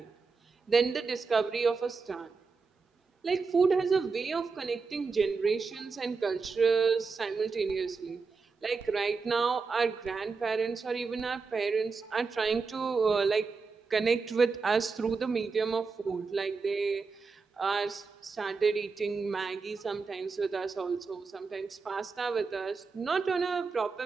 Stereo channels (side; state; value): left; quieter; 4.7 dB